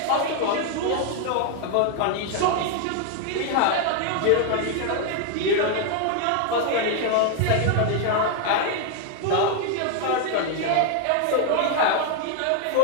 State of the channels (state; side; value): different; both; correlation 0.00